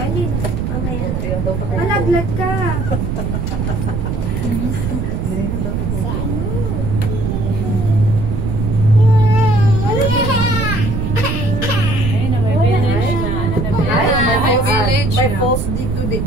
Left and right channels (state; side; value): noise; right; rumble, 2 dB below the sound